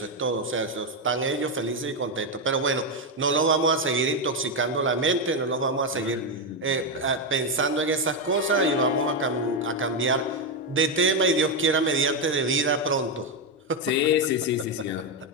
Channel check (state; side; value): normal; both; correlation 0.07